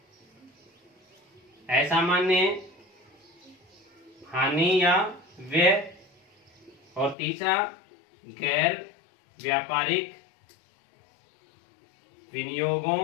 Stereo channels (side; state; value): right; drops out; at 7.2 s